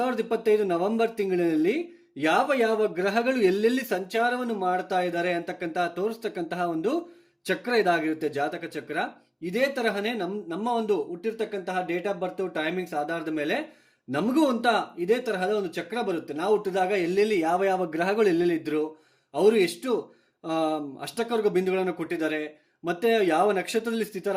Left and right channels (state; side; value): identical; both; correlation 1.00